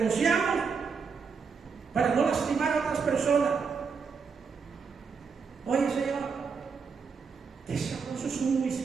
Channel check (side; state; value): left; quieter; 5.5 dB